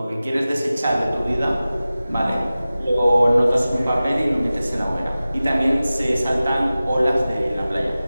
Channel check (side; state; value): both; inverted; correlation -0.96